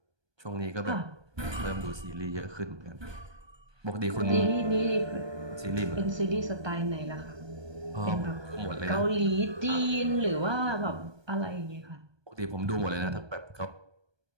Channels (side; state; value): left; late; 1.2 ms